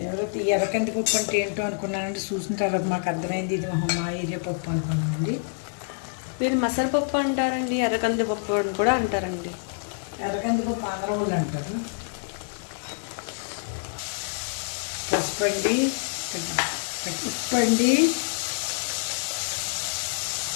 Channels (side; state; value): right; silent; digital silence